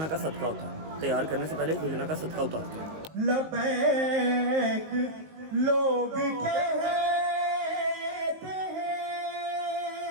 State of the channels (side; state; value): left; late; 19 ms